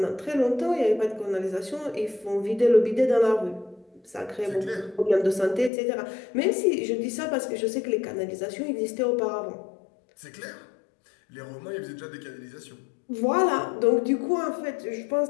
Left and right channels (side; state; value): right; drops out; at 5.7 s